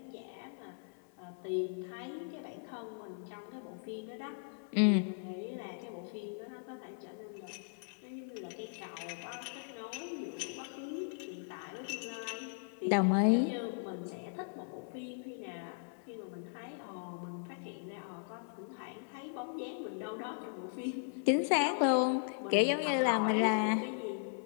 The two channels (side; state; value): right; silent; 53 dB below the other